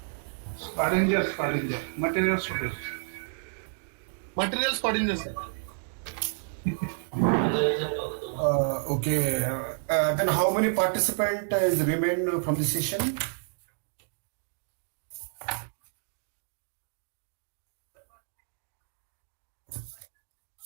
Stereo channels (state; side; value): silent; left; 58 dB below the other